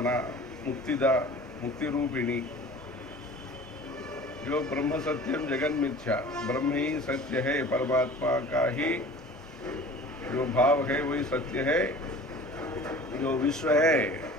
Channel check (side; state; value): both; normal; correlation 0.43